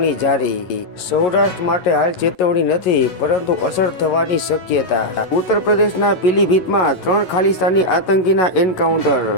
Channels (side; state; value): right; late; 11 ms